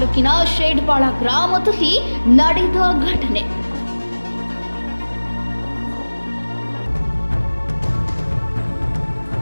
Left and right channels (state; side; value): inverted; both; correlation -1.00